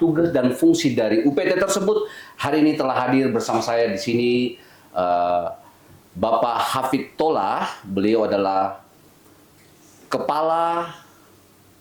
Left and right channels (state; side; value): identical; both; correlation 1.00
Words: dan fungsi dari UPT tersebut, hari ini telah hadir bersama saya di sini Bapak Hafid Tolah. Beliau adalah Kepala